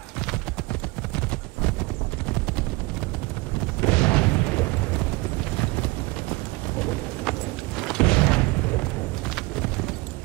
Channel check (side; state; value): left; quieter; 23.1 dB